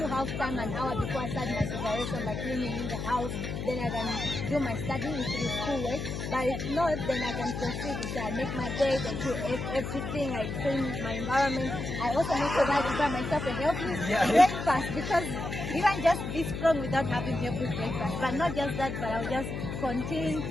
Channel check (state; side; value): noise; left; hum, 5 dB below the sound